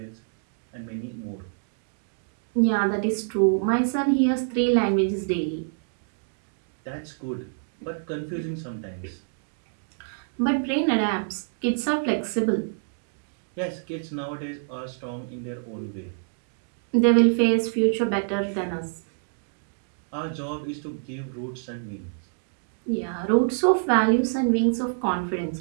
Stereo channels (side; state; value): left; silent; digital silence